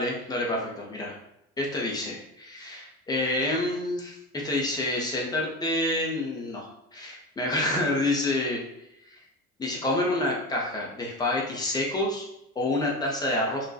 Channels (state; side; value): normal; both; correlation 0.23